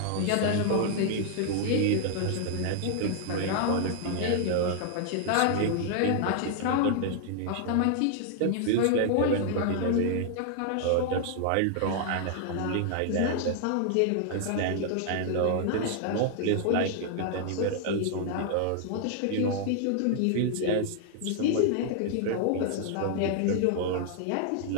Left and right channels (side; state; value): both; different; correlation 0.00